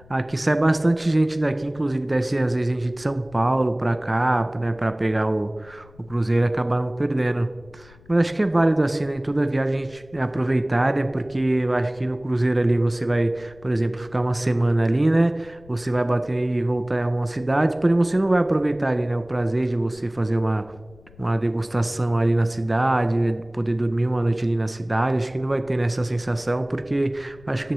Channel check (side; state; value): left; noise; rumble, 25 dB below the sound